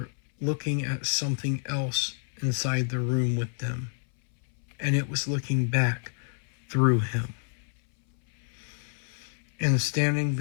looking at something else inside the room with them, and it was looking back through him. And standing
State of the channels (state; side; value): silent; right; 59 dB below the other